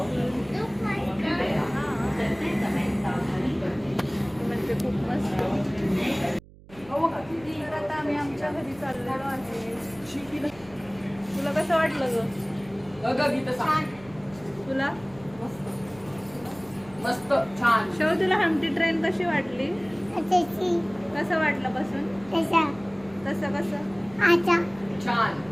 म्हणजे खूप मस्त. तर आता आम्ही आमच्या घरी चाललेलो आहे. तुला कसं वाटलं ग? तुला मस्त छान. शेव तुला हमटी ट्रेन कशी वाटली? त्याची कसं वाटलं बसून? त्याचा कसं कसं? आता छान.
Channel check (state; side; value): noise; right; hum, 22 dB below the sound